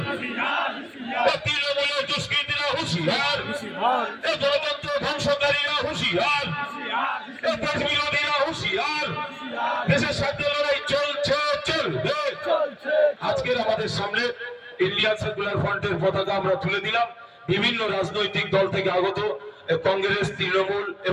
তৃণমূলের দুষ্কৃতীরা হুঁশিয়ার, গণতন্ত্র ধ্বংসকারীরা হুঁশিয়ার, দেশ বিরোধীরা হুঁশিয়ার। দেশের স্বার্থে লড়াই চলছে, চলবে। আজকের আমাদের সামনে ইন্ডিয়ান সেকুলার ফ্রন্টের পতাকা আমরা তুলে দিলাম। বিভিন্ন রাজনৈতিক দল থেকে আগত, কংগ্রেস, তৃণমূল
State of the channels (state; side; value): identical; both; correlation 1.00